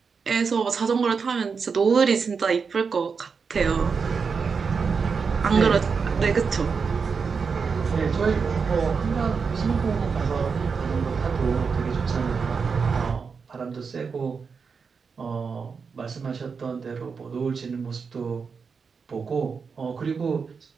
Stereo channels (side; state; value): left; quieter; 5.5 dB